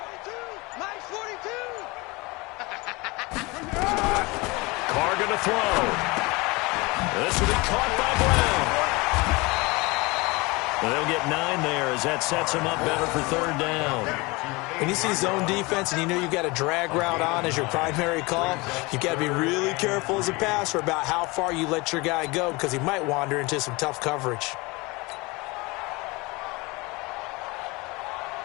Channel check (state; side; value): quieter; right; 24.7 dB